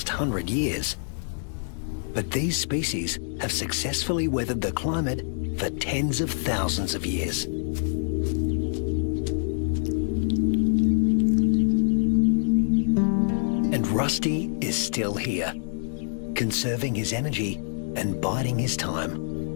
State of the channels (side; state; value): right; silent; 61 dB below the other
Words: 100 years. But these species have successfully weathered the climate for tens of thousands of years. Rusty is still here, conserving his energy and biding his time.